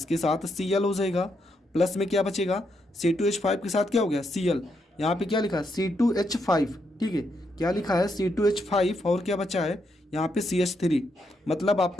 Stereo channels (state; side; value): normal; both; correlation 0.79